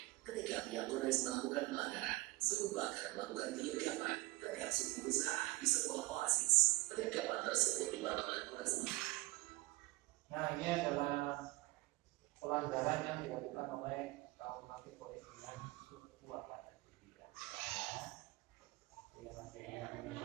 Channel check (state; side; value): quieter; left; 21.9 dB